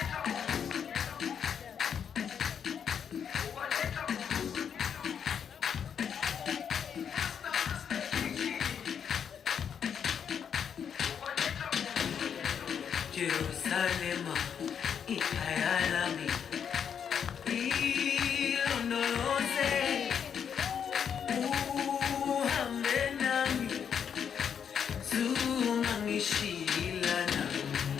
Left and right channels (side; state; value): right; quieter; 7.7 dB